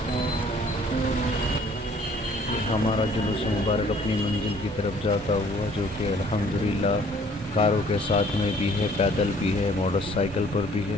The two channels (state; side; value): normal; both; correlation 0.57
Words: ہمارا جلوس مبارک اپنی منزل کی طرف جاتا ہوا، جو کہ الحمدللہ کاروں کے ساتھ میں بھی ہے، پیدل بھی ہے، موٹر سائیکل پر بھی